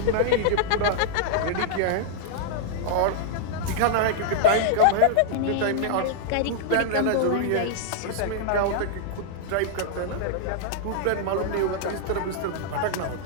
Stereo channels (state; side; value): different; both; correlation -0.01